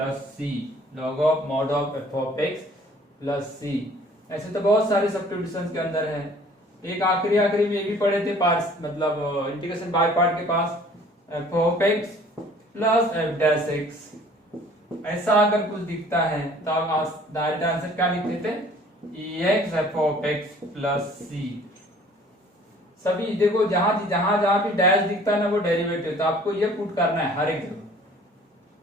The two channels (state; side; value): normal; both; correlation 0.53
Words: c, log of mod of f of x plus c। ऐसे तो बहुत सारे सब्स्टिट्यूशंस के अंदर है। एक आखिरी में ये भी पढ़े थे पार्ट्स, मतलब इंटीग्रेशन बाय पार्ट के पास f of x plus f dash x, ऐसा अगर कुछ दिखता है तो आप डायरेक्ट आंसर क्या लिख देते, ex f of x plus c। सभी देखो जहां भी डैश दिखता है ना वो डेरिवेटिव, तो आपको ये पुट करना है हर एक जगह,